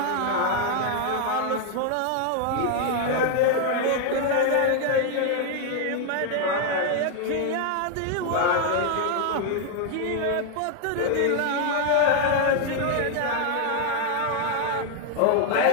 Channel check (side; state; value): both; different; correlation 0.00